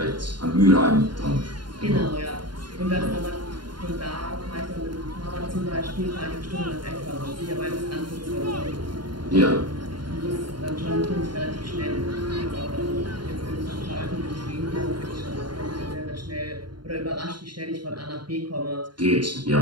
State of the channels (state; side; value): late; left; 0.72 ms